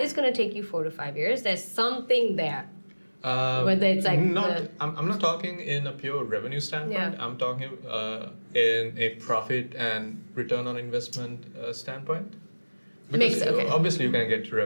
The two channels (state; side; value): inverted; both; correlation -1.00